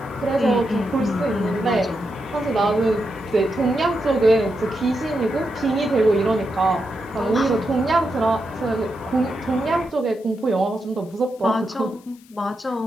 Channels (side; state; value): left; noise; hiss, 28 dB below the sound